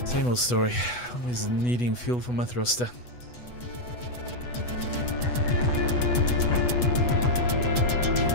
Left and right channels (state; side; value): late; right; 8.1 ms